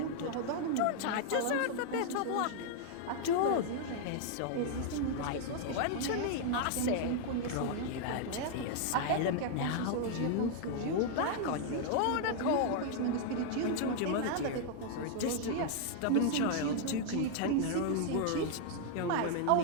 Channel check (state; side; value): different; both; correlation 0.00